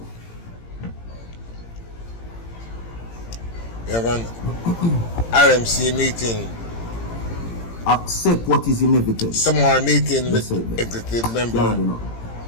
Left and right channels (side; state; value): right; late; 18 ms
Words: we have an RMC meeting. Accept what is inevitable. Tomorrow meeting with executive member